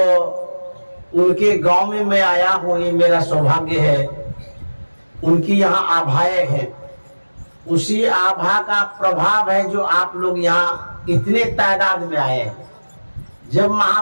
उनके गांव में मैं आया हूँ, ये मेरा सौभाग्य है। उनकी यहाँ आभाएं हैं, उसी आभा का प्रभाव है जो आप लोग यहाँ इतने तादाद में आए हैं। जब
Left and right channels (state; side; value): inverted; both; correlation -1.00